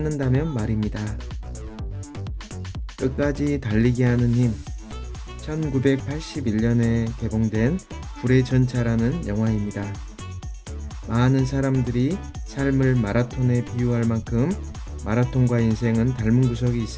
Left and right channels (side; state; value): both; identical; correlation 1.00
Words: 말입니다. 끝까지 달리게 하는 힘. 1981년에 개봉된 불의 전차라는 영화입니다. 많은 사람들이 삶을 마라톤에 비유할 만큼 마라톤과 인생은 닮은 구석이